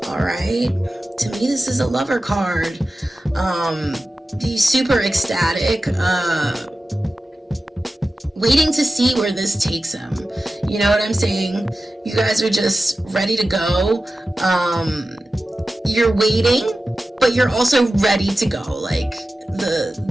All right, to me this is a lover card. Be super ecstatic, waiting to see where this takes him. You know what I'm saying? You guys are just ready to go. You're waiting, but you're also ready to go. Like,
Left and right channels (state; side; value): normal; both; correlation 0.94